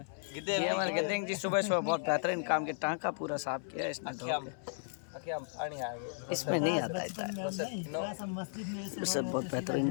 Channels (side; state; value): right; silent; 54 dB below the other